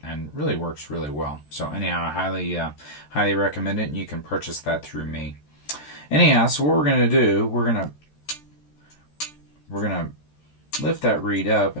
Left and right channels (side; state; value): right; late; 14 ms